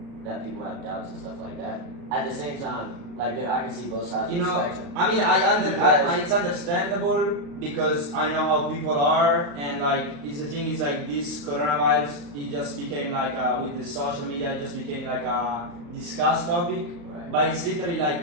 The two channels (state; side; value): late; left; 35 ms